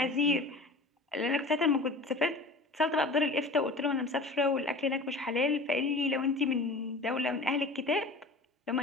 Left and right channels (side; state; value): right; quieter; 3.1 dB